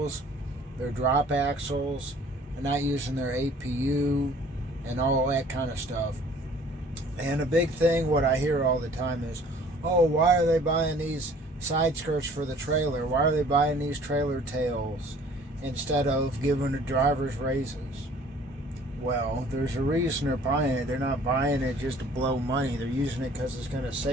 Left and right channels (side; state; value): both; normal; correlation 0.53